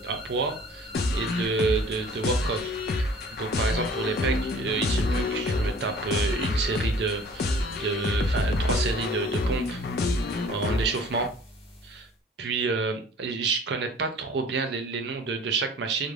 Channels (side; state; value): both; normal; correlation 0.49